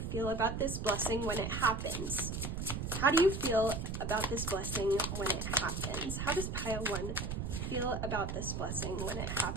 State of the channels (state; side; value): noise; right; rumble, 3 dB below the sound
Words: about this blessing when it happens? How do you feel about this blessing when it happens? How does pile 1 feel about this blessing when it